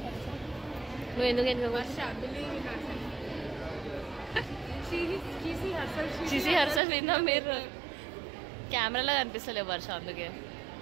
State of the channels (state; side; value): drops out; left; at 6.8 s